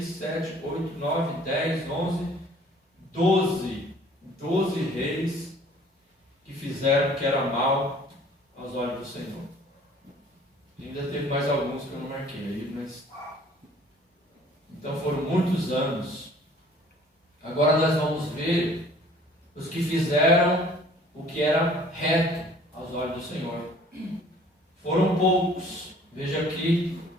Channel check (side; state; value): both; normal; correlation 0.53